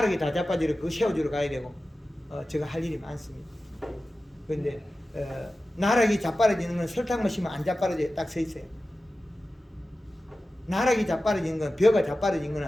다 자빠지러 그거 세워주러 가야 되고 제가 할 일이 많습니다. 그런데 나락이 자빠져지는 건 설탕만 심으면 안 자빠져져 딱 서 있어요. 나락이 자빠져지는 건 벼가 자빠져진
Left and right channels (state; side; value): normal; both; correlation 0.94